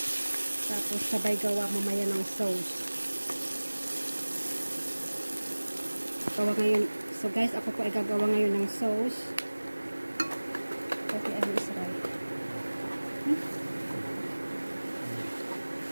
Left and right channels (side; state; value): both; inverted; correlation -1.00